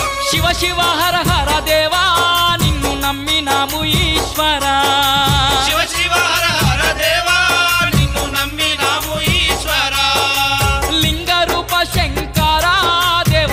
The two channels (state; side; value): identical; both; correlation 1.00